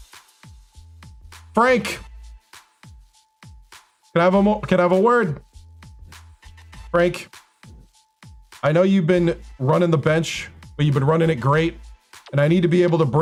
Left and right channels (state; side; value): identical; both; correlation 1.00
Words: Frank. Can I have a word? Frank, I know you've been running the bench, but you've been running it great. And I need to be able to